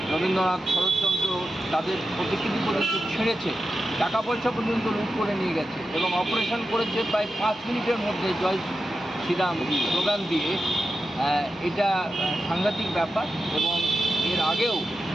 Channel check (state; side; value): normal; both; correlation 0.90